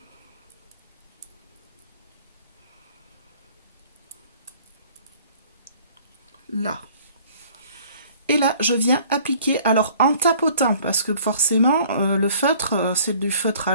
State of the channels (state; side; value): inverted; both; correlation -0.54